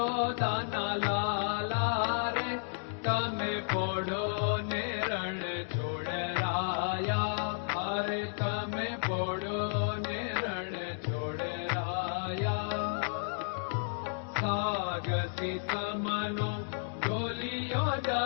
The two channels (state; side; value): silent; right; digital silence